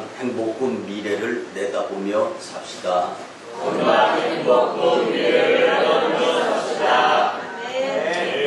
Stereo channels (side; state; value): both; identical; correlation 1.00